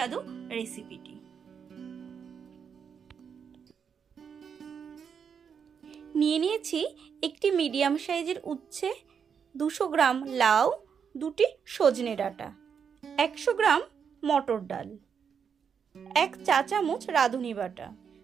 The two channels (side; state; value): left; quieter; 7.0 dB